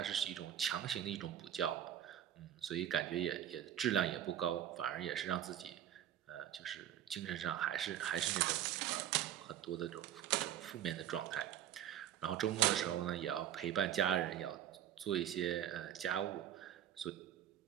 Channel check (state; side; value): quieter; left; 11.0 dB